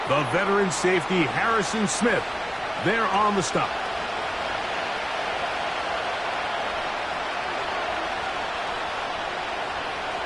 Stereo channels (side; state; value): both; identical; correlation 1.00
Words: The veteran safety, Harrison Smith, there on the stop.